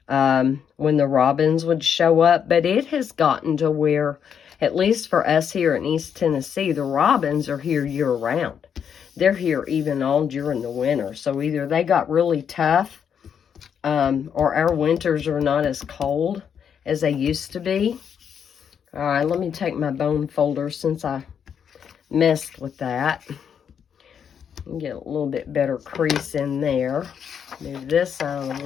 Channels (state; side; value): quieter; right; 7.8 dB